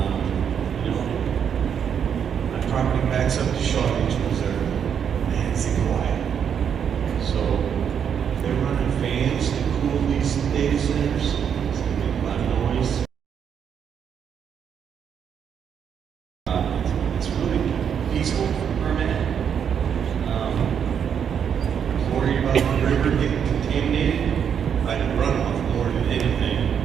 my property backs up to Shaw Nature Reserve. Man, it's quiet. So if they're running fans to cool these data centers, it's gonna make a lot of noise. It's really peaceful for a minute. river get contaminated by the runoff more than anything.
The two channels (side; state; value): left; quieter; 7.9 dB